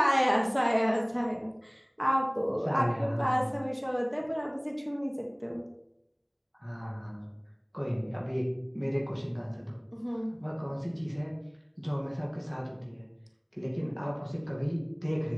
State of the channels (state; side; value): identical; both; correlation 1.00